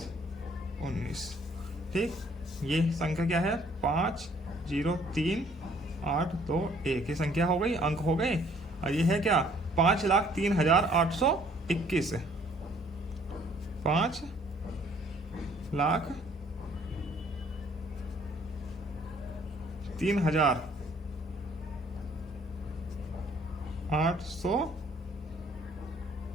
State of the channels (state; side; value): normal; both; correlation 0.60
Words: 19। ठीक, ये संख्या क्या है 5 0 3 8 2 1। ये संख्या हो गई, अंक हो गए। और ये है क्या 5,03,821,